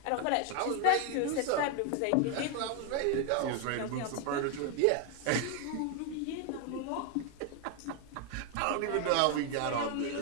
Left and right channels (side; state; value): both; different; correlation 0.01